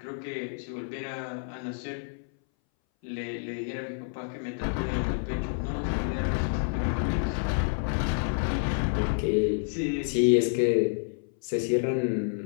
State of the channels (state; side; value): silent; right; 59 dB below the other